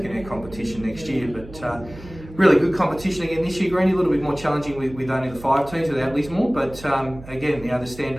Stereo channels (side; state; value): right; noise; hum, 16 dB below the sound